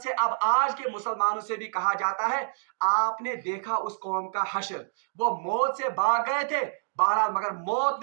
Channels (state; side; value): silent; left; digital silence